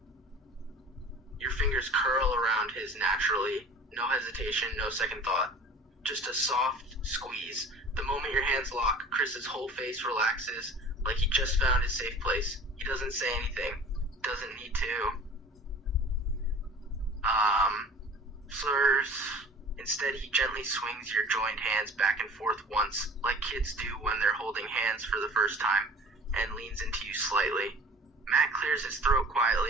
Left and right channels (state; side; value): normal; both; correlation 0.44